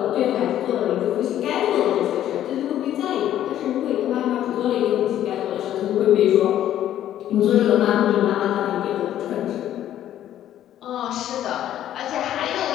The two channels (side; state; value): right; quieter; 11.7 dB